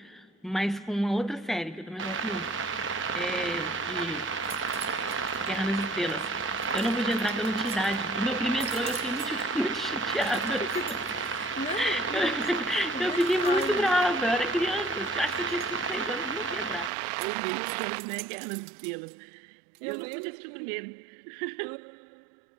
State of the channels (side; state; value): left; drops out; at 16.9 s